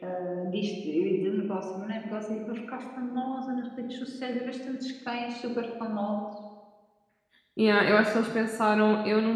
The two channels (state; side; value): identical; both; correlation 1.00